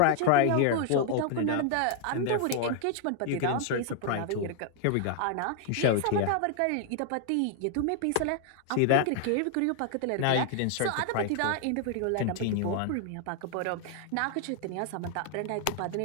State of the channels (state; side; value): different; both; correlation 0.00